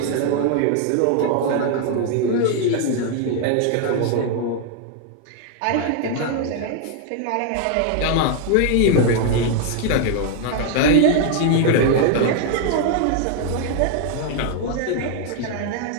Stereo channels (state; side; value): different; both; correlation 0.00